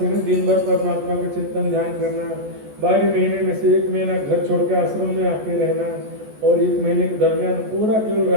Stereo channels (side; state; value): left; late; 14 ms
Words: है, दिन भर परमात्मा का चिंतन ध्यान करना। 12 महीने में से 1 महीना घर छोड़ के आश्रम में आके रहना, और 1 महीने के दरमियान पूरा केवल